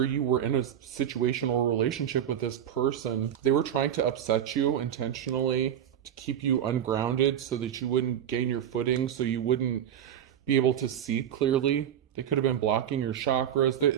you were in a situation or relationship with this person. They were trying to upset you intentionally to keep you ungrounded so that you wouldn't gain your footing, so you wouldn't be able to see clearly. They could have been blocking your chakras.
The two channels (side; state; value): left; quieter; 9.9 dB